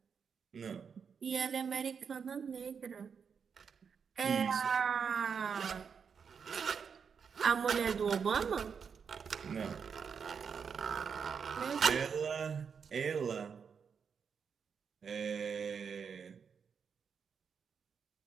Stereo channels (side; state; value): left; quieter; 6.4 dB